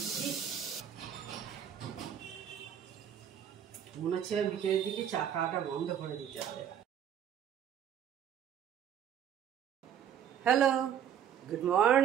মনে হচ্ছে বিকেলের দিকে চা খাওয়াটা বন্ধ করে দিতে হবে। Hello, good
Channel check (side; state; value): left; quieter; 9.2 dB